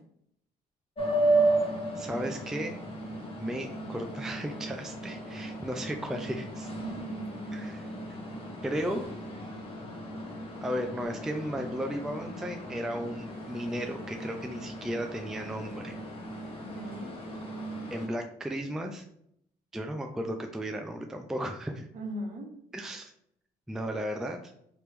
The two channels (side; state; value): both; normal; correlation 0.78